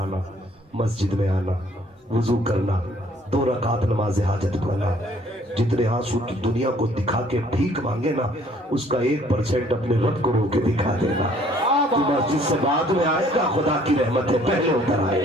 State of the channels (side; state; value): both; normal; correlation 0.60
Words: مسجد میں آنا, وضو کرنا, 2 رکعت نماز حاجت پڑھنا. جتنے آنسو کی دنیا کو دکھا کے بھیک مانگے نا اس کا 1% اپنے رب کو رو کے دکھا دینا. تو مسجد سے بعد میں آئے گا, خدا کی رحمت ہے پہلے اتر